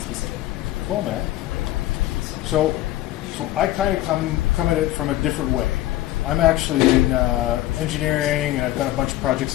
specific. Cool, man. So I kind of come at it from a different way. I'm actually in engineering, and I've done a bunch of projects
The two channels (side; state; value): right; quieter; 14.9 dB